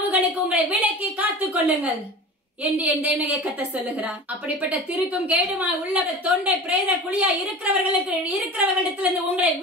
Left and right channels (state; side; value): normal; both; correlation 0.34